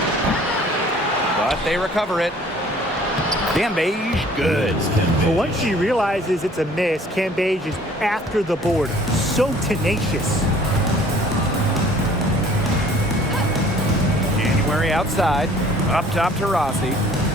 But they recover it. Cambage, good. But once she realizes it's a miss, Cambage is after the board. So tenacious. January outside. Up top to Rossi.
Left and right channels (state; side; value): normal; both; correlation 0.53